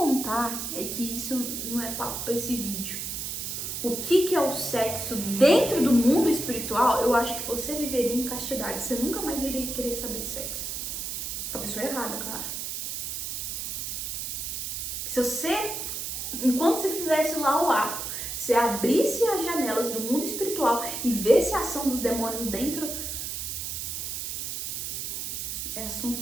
é que isso não é papo para esse vídeo. O que é o sexo dentro do mundo espiritual, eu acho que você viveria em castidade. Você nunca mais iria querer saber de sexo. Com a pessoa errada, claro. Se você, enquanto você fizesse lá o ato, você abrisse as janelas do mundo espiritual e visse a ação dos demônios dentro, é assunto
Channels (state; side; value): noise; right; hiss, 4 dB below the sound